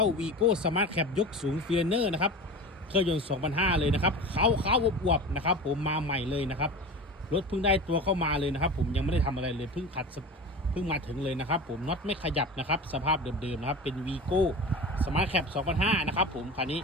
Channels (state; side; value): normal; both; correlation 0.31